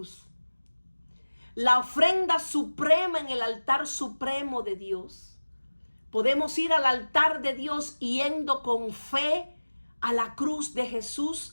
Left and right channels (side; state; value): both; inverted; correlation -1.00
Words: La ofrenda suprema en el altar supremo de Dios. Podemos ir al altar de Dios yendo con fe a la cruz de